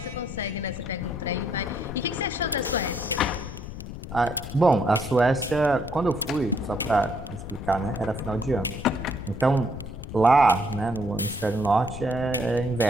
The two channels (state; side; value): noise; left; rumble, 10 dB below the sound